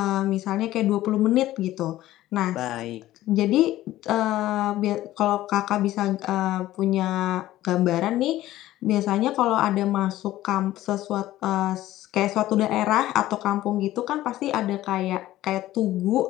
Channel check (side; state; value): right; quieter; 15.0 dB